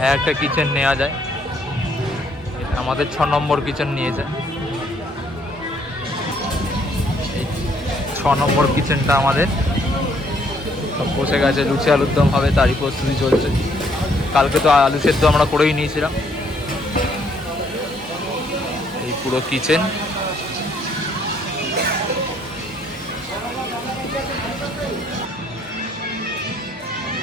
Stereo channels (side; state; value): both; normal; correlation 0.67